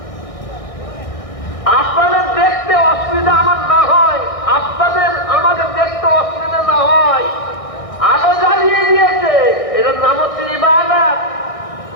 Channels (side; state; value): right; late; 1.6 ms